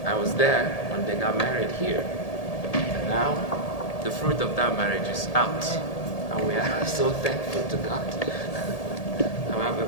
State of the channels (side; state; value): right; late; 1.8 ms